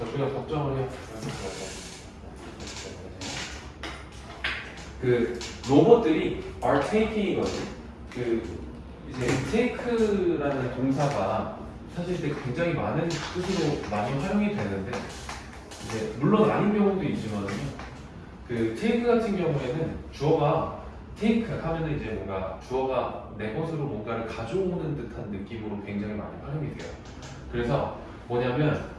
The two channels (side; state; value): both; identical; correlation 1.00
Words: 우리가 걱정을 해요. 그 로봇들이 are taking이거든. 그 이제 take라는 동사가 사실 이제 굉장히 많은 뜻으로 많이 활용이 되는데 이제 물론 아닌 경우도 있지만요. 그 take 같은 경우에는 주어가 take 하면은 이제 뭔가 주어가 내 것으로 뭔가를 가져오는 듯한 느낌으로 굉장히 많이 활용이 돼요. 그래서 뭐냐면